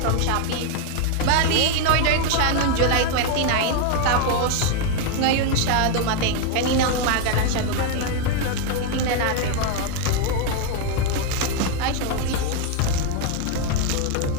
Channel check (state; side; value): different; both; correlation 0.01